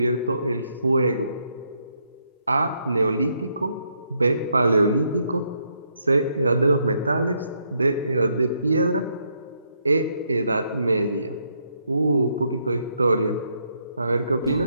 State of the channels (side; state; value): both; inverted; correlation -0.75